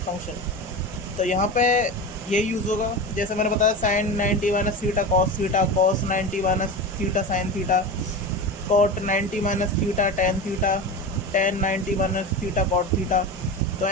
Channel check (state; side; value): normal; both; correlation 0.26